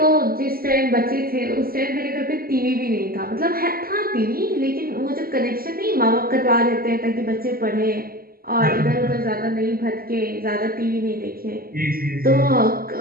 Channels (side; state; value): left; late; 0.43 ms